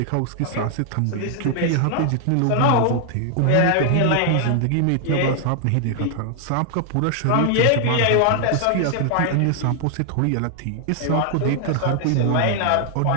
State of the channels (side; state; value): both; different; correlation 0.00